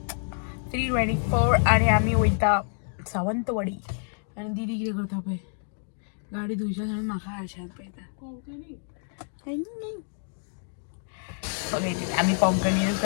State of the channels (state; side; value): silent; right; 60 dB below the other